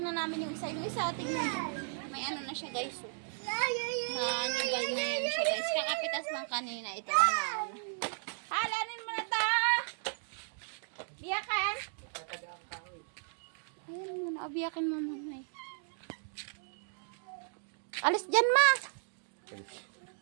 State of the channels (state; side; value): silent; left; digital silence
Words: na namin yung isa. Yung isa, tingnan nyo. May ano na siya, guys. Nanigal na yan siya, guys. Kakapitas lang kanina. Ito na. Halanin mo na to! Biyakan! Ayan muna. Biyakin mo muna. Alis dyan, ma!